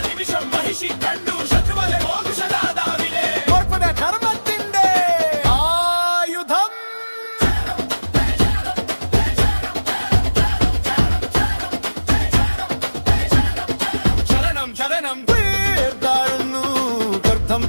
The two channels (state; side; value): inverted; both; correlation -1.00